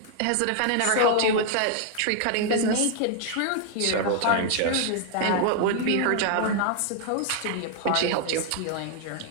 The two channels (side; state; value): both; different; correlation 0.00